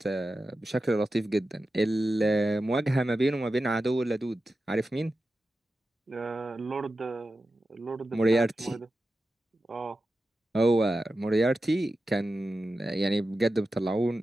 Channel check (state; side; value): normal; both; correlation 0.92